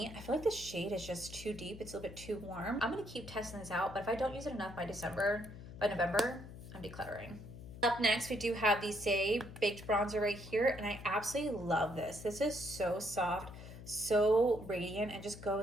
I feel like the shade is just too deep. It's a little bit too warm. I'm gonna keep testing this out, but if I don't use it enough by November, I'm decluttering. Up next, we do have the Say Baked Bronzer right here, and I absolutely love this. This is so soft, so radiant, and just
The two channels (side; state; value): left; noise; hum, 14 dB below the sound